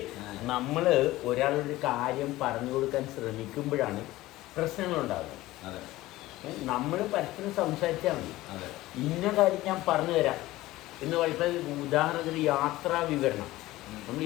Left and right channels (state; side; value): quieter; right; 17.4 dB